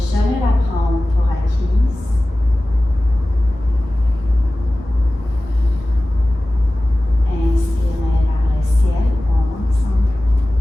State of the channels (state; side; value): normal; both; correlation 0.97